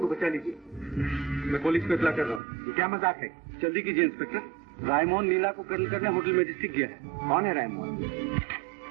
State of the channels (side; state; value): left; drops out; at 2.4 s